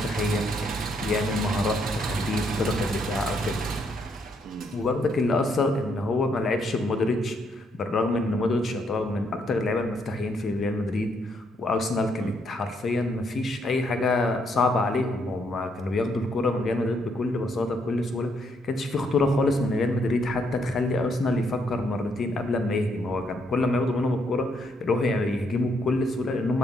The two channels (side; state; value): both; normal; correlation 0.73